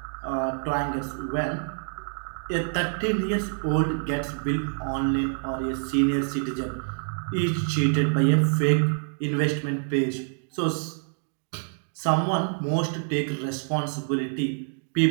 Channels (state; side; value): silent; left; digital silence